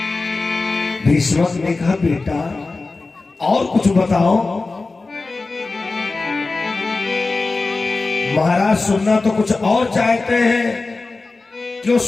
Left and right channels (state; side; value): quieter; right; 3.6 dB